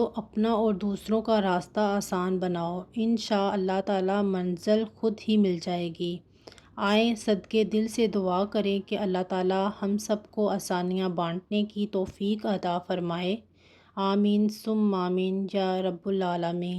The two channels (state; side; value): identical; both; correlation 1.00